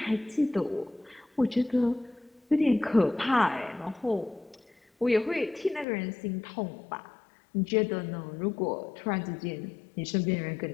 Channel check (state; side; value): drops out; right; at 5.9 s